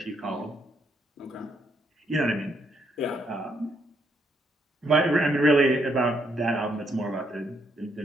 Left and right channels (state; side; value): normal; both; correlation 0.74